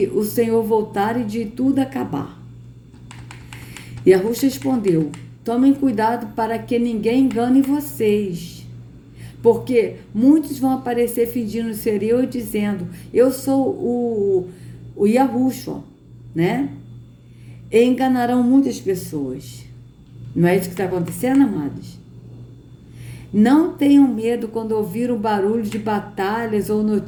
o Senhor voltar e de tudo acabar? E Yahushua respondeu: tomem cuidado para que ninguém engane vocês, porque muitos vão aparecer fingindo ser eu e dizendo: eu sou o Yahushua, né? E enganarão muitas pessoas. Não é isso que está acontecendo, amados? Não tenham medo quando ouvir o barulho de batalhas ou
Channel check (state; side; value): identical; both; correlation 1.00